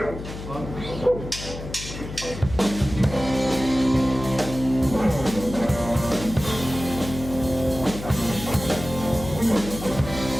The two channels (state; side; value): noise; left; hum, 10 dB below the sound